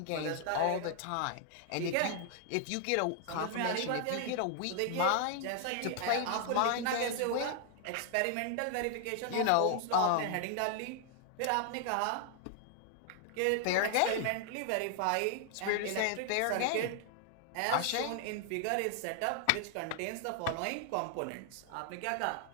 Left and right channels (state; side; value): different; both; correlation 0.00